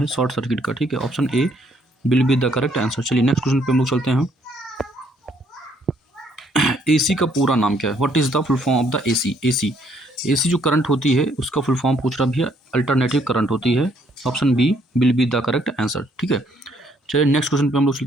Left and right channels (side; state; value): both; normal; correlation 0.67